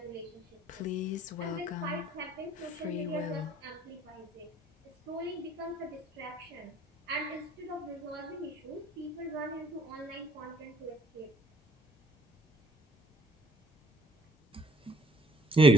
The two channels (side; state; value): both; normal; correlation 0.60